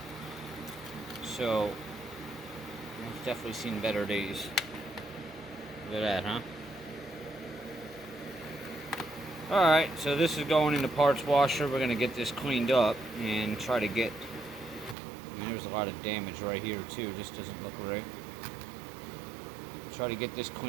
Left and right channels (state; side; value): drops out; left; at 15.0 s